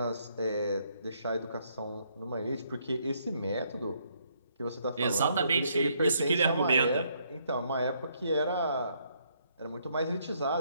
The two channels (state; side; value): inverted; both; correlation -0.71